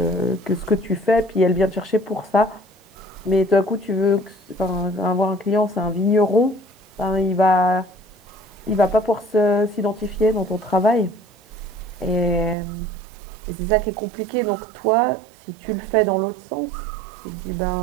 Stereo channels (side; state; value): left; drops out; at 12.6 s